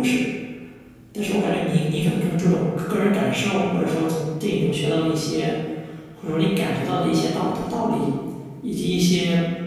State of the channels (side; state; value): both; identical; correlation 1.00